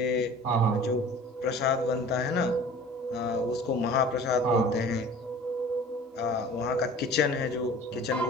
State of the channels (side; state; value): both; normal; correlation 0.44